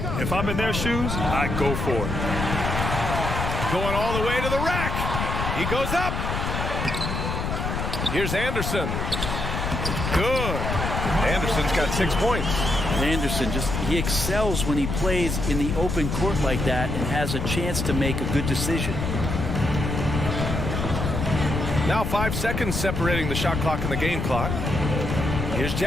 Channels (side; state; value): left; noise; rumble, 2 dB below the sound